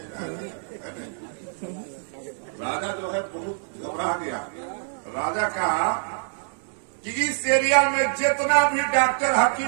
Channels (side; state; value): left; silent; digital silence